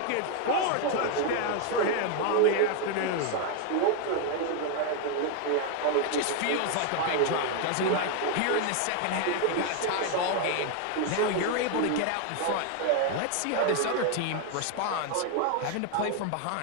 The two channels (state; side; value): different; both; correlation 0.00